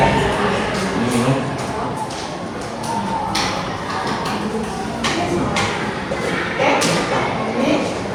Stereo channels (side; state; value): both; identical; correlation 1.00